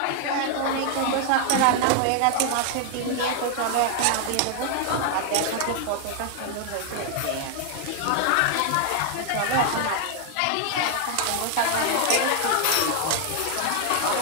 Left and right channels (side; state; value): both; different; correlation 0.00